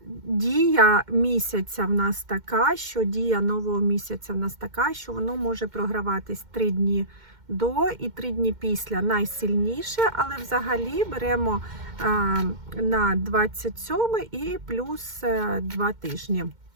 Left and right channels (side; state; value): left; late; 2.1 ms